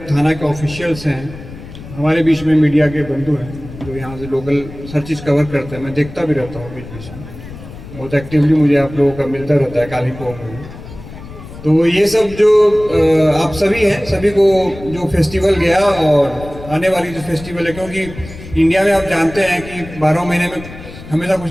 थाना के ऑफिशियल्स हैं, हमारे बीच में मीडिया के बंधु हैं जो यहाँ से लोकल हर चीज़ कवर करते हैं। मैं देखता भी रहता हूँ बीच बीच में, बहुत एक्टिवली मुझे आप लोगों का मिलता रहता है काली पोंग में। तो ये सब जो आप सभी हैं, सभी को जो फेस्टिवल गया और आने वाली जो फेस्टिवल है, क्योंकि इंडिया में आप जानते हैं कि 12 महीने में हमेशा कुछ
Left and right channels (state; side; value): noise; left; rumble, 15 dB below the sound